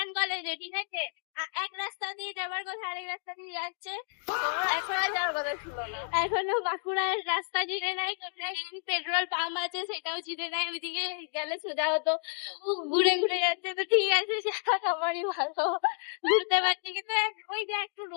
কলেজে। ঠিক আছে, এক রাস্তা দিয়ে যাবার কথা, আরেক রাস্তা দিয়ে যাচ্ছে। এখনো বাঁকুড়ার রাস্তা চিনে নাই, কোথায় পেট্রোল পাম্প আছে সেটাও চিনে নাই, ওইদিকে গেলে সোজা হতো, ঘুরে ঘুরে যাচ্ছে। তো ঠিক আছে, সেটা আমারই ভালো, ঘুরতে পারছি, কিন্তু ওই যে একটু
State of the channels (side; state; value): right; silent; digital silence